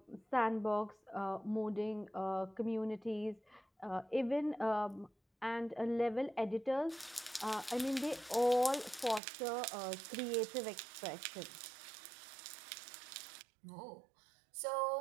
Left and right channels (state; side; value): drops out; left; at 9.2 s